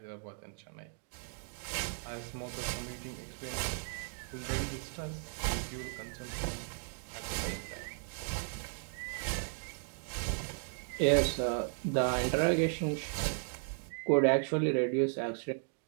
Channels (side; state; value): left; silent; 54 dB below the other